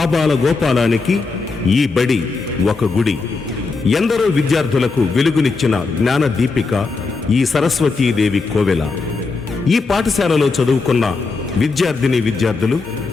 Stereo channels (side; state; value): right; quieter; 4.1 dB